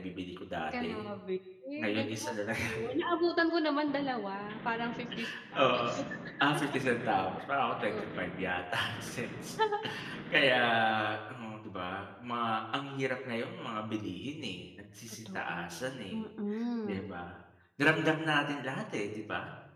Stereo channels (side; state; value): both; identical; correlation 1.00